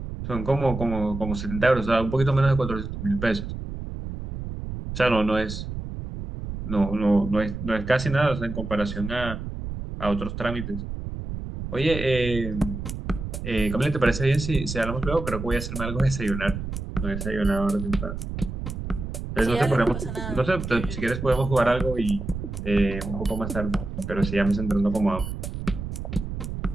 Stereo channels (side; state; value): right; noise; rumble, 7 dB below the sound